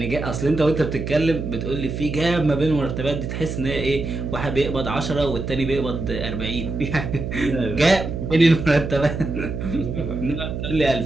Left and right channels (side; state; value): right; noise; hum, 5 dB below the sound